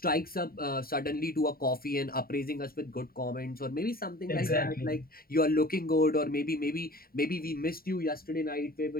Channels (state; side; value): late; right; 0.43 ms